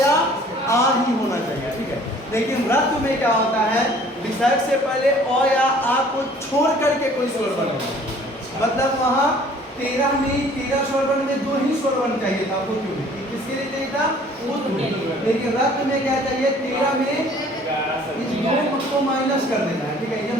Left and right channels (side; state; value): both; normal; correlation 0.53